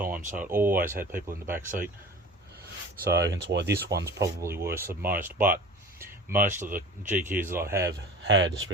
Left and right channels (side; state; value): both; normal; correlation 0.39